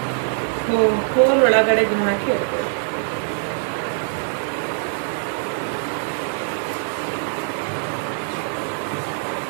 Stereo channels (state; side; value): silent; left; digital silence